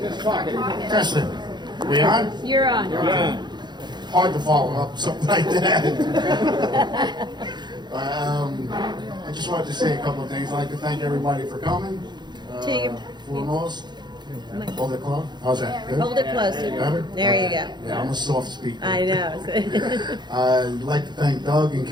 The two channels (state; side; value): late; left; 0.21 ms